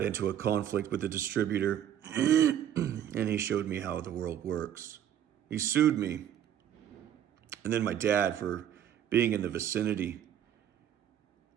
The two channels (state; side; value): quieter; left; 10.2 dB